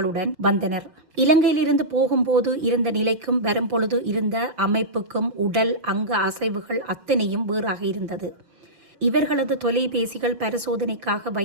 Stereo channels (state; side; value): late; left; 5.3 ms